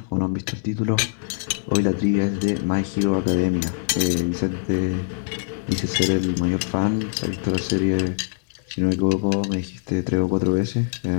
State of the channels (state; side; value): silent; right; 63 dB below the other